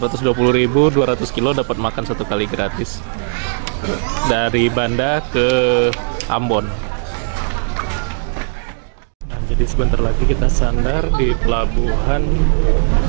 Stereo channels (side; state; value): left; silent; digital silence